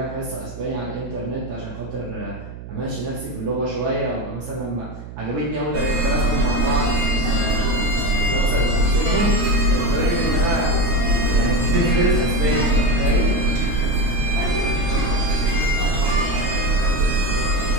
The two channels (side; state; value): right; noise; hum, 13 dB below the sound